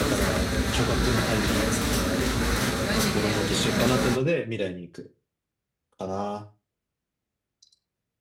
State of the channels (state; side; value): identical; both; correlation 1.00